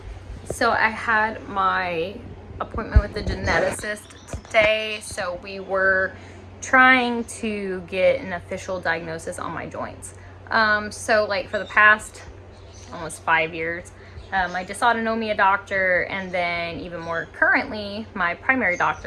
So I had my appointment with the geneticist today, so we were trying to get an official diagnosis on my joints. So like for the past almost 5 years, my dysautonomia doctor and then even more currently, my primary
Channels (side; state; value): both; identical; correlation 1.00